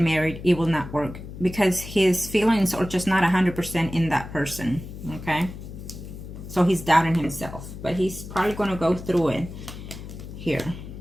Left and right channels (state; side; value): noise; left; hum, 12 dB below the sound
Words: it will not work. Because his feelings are just not 100% in that person. Okay? So he's doubting himself. But he's probably going to go through it here.